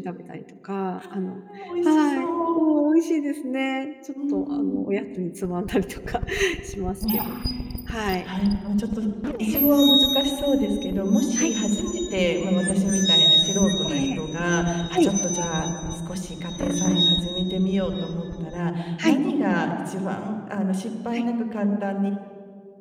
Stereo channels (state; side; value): identical; both; correlation 1.00